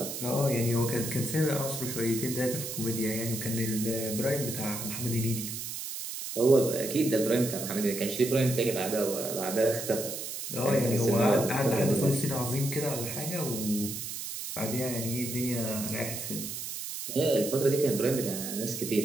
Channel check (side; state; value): right; noise; hiss, 6 dB below the sound